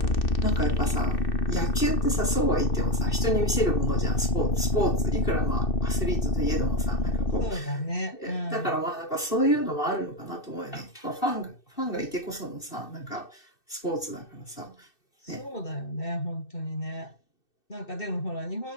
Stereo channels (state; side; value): late; right; 2.6 ms